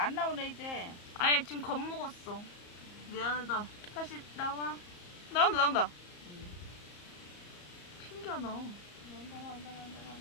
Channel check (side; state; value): right; late; 34 ms